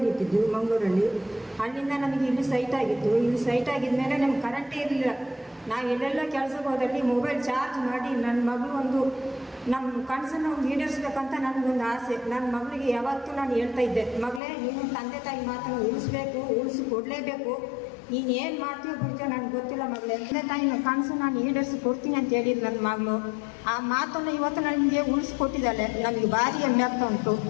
ಇಟ್ಟಿದ್ದು ಮಂಗಳೂರಲ್ಲಿ. ಅಲ್ಲಿಂದ ನಮಗೆ ಇಲ್ಲಿ ಸೈಟ್ ಆಗಿತ್ತು. ಇಲ್ಲಿ ಸೈಟ್ ಆಗಿದ ಮೇಲೆ ನಮ್ಗೆ ಕರೆಂಟೇ ಇರಲಿಲ್ಲ. ನಾವು ಎಲ್ಲೆಲ್ಲ ಕೆಲಸಕ್ಕೆ ಹೋದಲ್ಲಿ ಮೊಬೈಲ್ ಚಾರ್ಜ್ ಮಾಡಿ ನನ್ನ ಮಗಳು ಒಂದು ನಮ್ಮ ಕನಸನ್ನು ಈಡೇರಿಸ್ಬೇಕಂತ ನನಗೊಂದು ಆಸೆ. ನನ್ನ ಮಗಳಿಗೆ ಯಾವತ್ತೂ ನಾನು ಹೇಳ್ತಾ ಇದ್ದೆ, ಮಗಳೇ ನೀನು ತಂದೆ ತಾಯಿ ಮಾತನ್ನು ಉಳಿಸ್ಕೊಡ್ಲೇಬೇಕು. ನೀನು ಏನು ಮಾಡ್ತೀವೋ ಬಿಡ್ತೀವೋ ನನಗೆ ಗೊತ್ತಿಲ್ಲ ಮಗಳೇ, ತಂದೆ ತಾಯಿನ ಕನಸು ನಾನು ಈಡೇರಿಸಿ ಕೊಡ್ತೀನಿ ಅಂತ ಹೇಳಿದ್ರು ನನ್ನ ಮಗಳು. ಆ ಮಾತನ್ನು ಇವತ್ತು ನನಗೆ ಉಳಿಸ್ಕೊಟ್ಟಿದ್ದಾಳೆ. ನನಗೆ ಭಾರಿ ಹೆಮ್ಮೆ ಆಗ್ತಾ ಉಂಟು.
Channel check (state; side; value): drops out; right; at 14.4 s